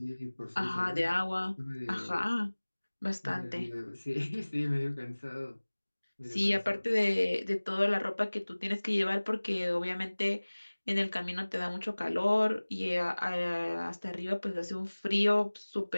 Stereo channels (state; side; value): inverted; both; correlation -1.00